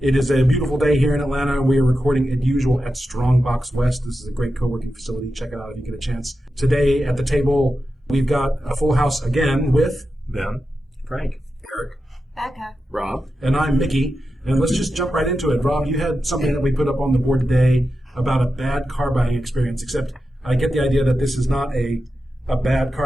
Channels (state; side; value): normal; both; correlation 0.90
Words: It is a beautiful day here in Atlanta. We are recording as usual at Strongbox West. This is a great co-working facility. Check it out if you get a chance. Today at the table, we've got a full house again with Ben, Frank, Eric, Beka, Rob, and I'm Mickey. And let's just jump right into it. Rob, you had something that we put up on the board today about a bad car buying experience, except I get the idea that this is not a bad